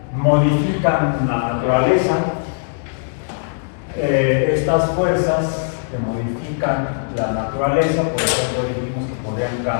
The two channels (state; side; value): silent; right; digital silence